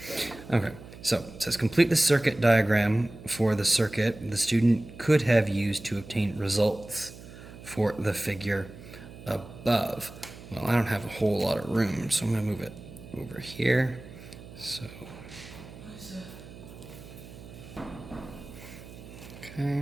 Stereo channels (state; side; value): noise; right; hum, 16 dB below the sound